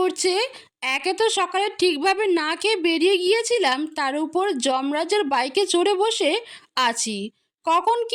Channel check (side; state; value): both; identical; correlation 1.00